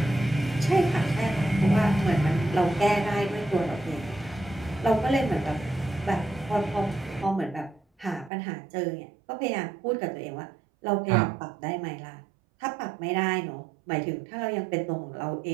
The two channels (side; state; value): left; drops out; at 8.3 s